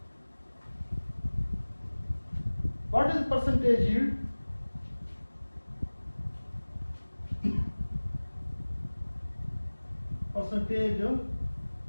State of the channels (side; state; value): both; inverted; correlation -1.00